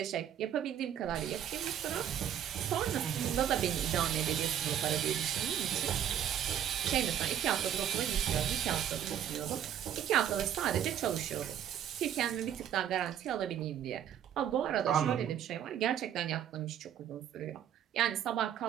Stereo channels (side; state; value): left; quieter; 10.0 dB